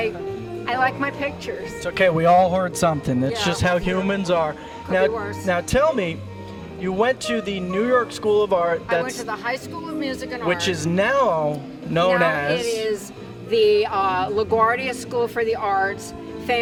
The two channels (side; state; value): both; identical; correlation 1.00